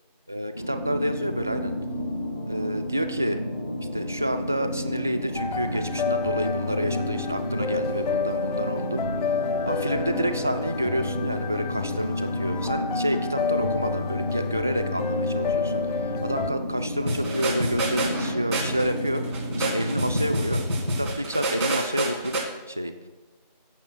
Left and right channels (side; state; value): both; inverted; correlation -0.61